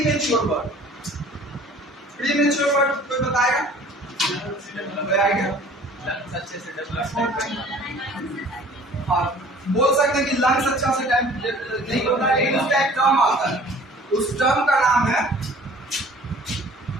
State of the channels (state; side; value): normal; both; correlation 0.49